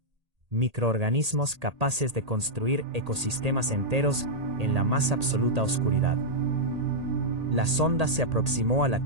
Microorganismos capaces de construir ecosistemas enteros en la más absoluta oscuridad. La sonda se aproximó a la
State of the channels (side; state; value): left; late; 1.8 ms